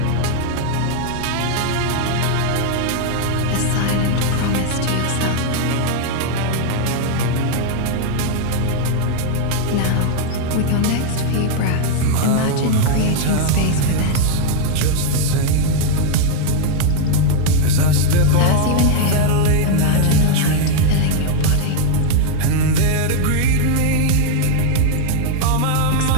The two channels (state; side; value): different; both; correlation 0.00